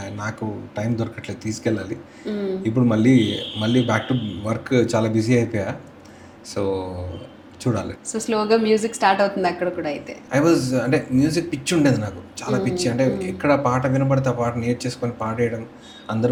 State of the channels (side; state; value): both; identical; correlation 1.00